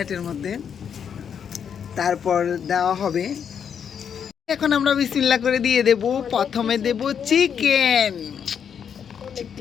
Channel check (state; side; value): quieter; right; 7.7 dB